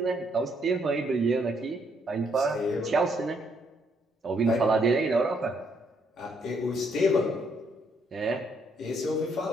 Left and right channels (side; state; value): both; normal; correlation 0.72